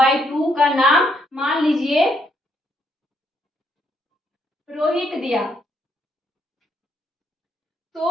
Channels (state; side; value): normal; both; correlation 0.73